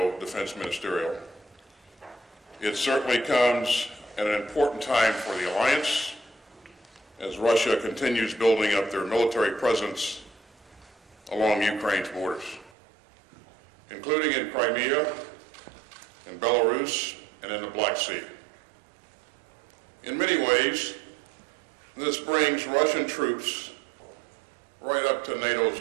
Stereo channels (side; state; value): left; drops out; at 12.7 s